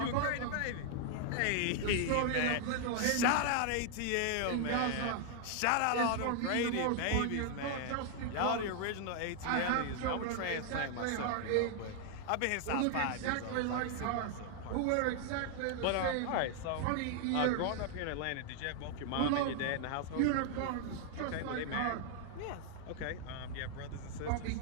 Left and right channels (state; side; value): different; both; correlation 0.00